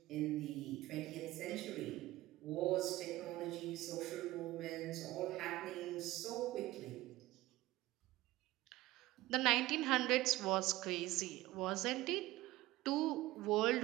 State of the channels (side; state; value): left; quieter; 17.6 dB